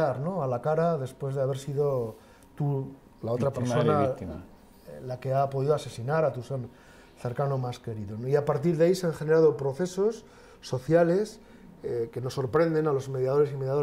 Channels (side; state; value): both; identical; correlation 1.00